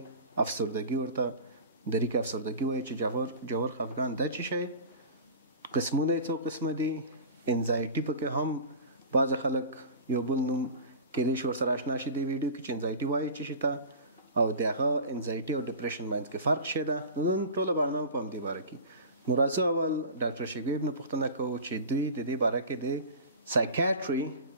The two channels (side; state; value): both; inverted; correlation -0.34